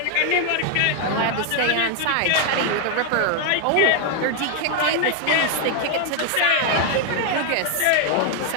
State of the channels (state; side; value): different; both; correlation 0.00